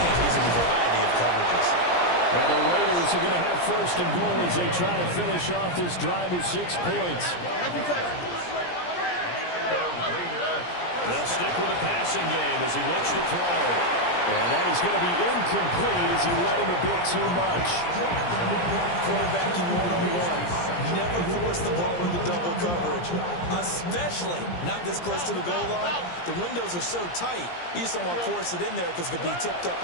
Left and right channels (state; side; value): late; right; 17 ms